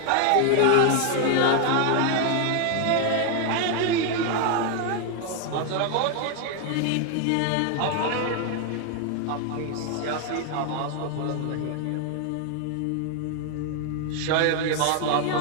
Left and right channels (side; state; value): both; different; correlation 0.01